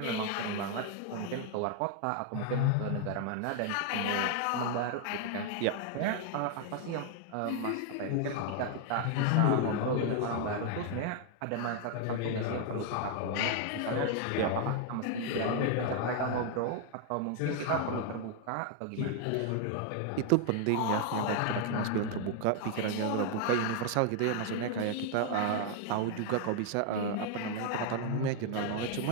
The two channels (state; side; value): different; both; correlation 0.00